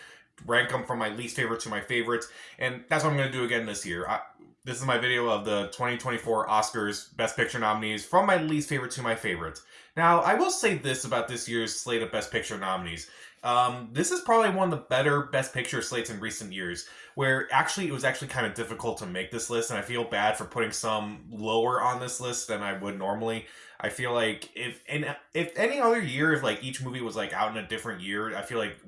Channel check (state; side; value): identical; both; correlation 1.00